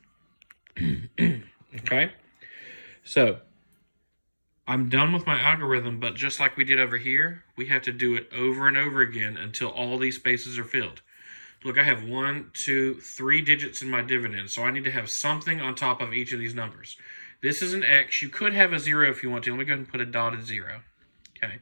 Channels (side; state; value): both; inverted; correlation -1.00